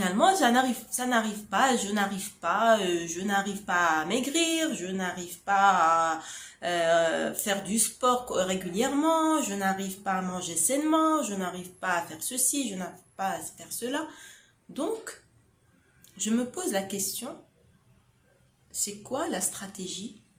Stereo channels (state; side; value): identical; both; correlation 1.00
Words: ça n'arrive pas, je n'arrive pas à maigrir, je n'arrive pas à faire du sport régulièrement, je n'arrive pas à manger sainement, je n'arrive pas à faire ceci, je n'arrive pas à faire cela. Donc, je me pose la question, c'est quoi la stratégie